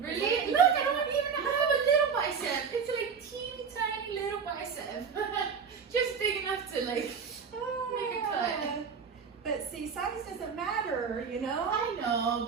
Look, I don't even have a little bicep. It's like teeny tiny little bicep. Just big enough to like make a cut. But see, size doesn't matter, you know? I know,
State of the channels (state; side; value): quieter; left; 6.1 dB